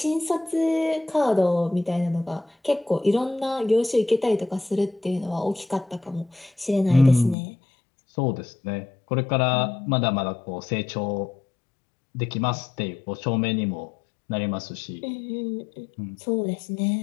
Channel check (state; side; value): drops out; right; at 7.4 s